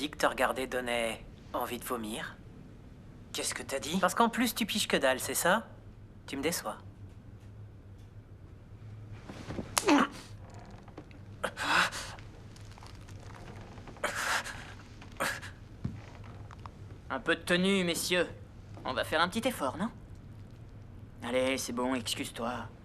que te regarder donnait envie de vomir? Qu'est-ce que t'as dit? Parce qu'en plus, tu piges que dalle, c'est ça? Tu me déçois. Un peu de tenue, messieurs. On va faire un petit effort, non? Allez, c'est bon, excuse-toi.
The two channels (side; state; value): both; identical; correlation 1.00